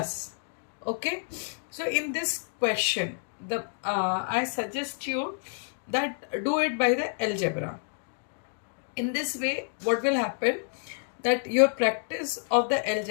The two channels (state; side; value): silent; right; digital silence